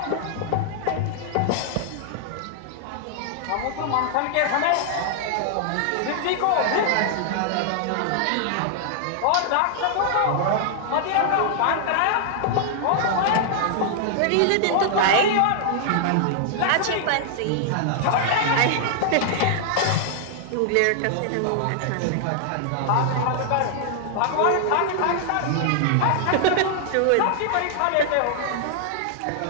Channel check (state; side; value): different; both; correlation 0.00